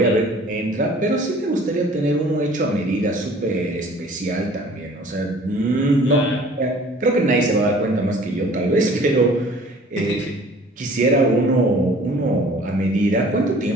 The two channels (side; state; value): both; normal; correlation 0.50